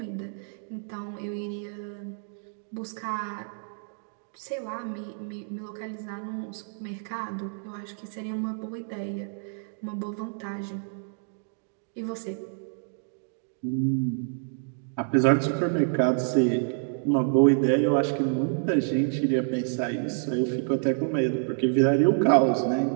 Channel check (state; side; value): silent; left; digital silence